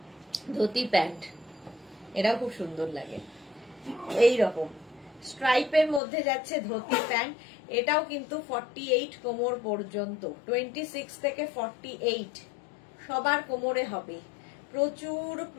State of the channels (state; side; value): drops out; right; at 6.0 s